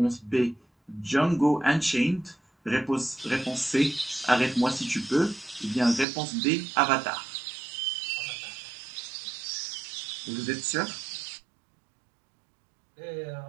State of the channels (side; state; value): left; drops out; at 6.1 s